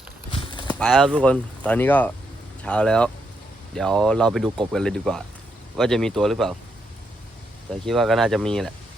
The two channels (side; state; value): both; normal; correlation 0.79